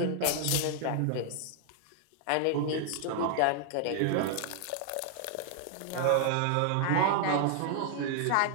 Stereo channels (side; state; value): both; different; correlation 0.00